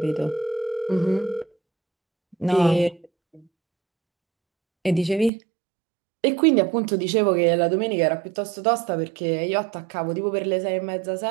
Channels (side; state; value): left; drops out; at 5.3 s